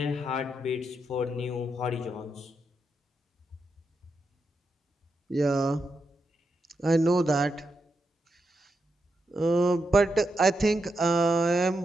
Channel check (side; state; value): both; normal; correlation 0.84